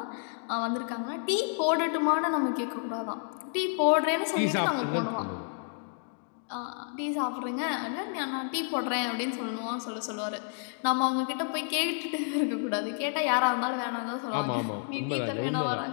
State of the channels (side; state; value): right; silent; 58 dB below the other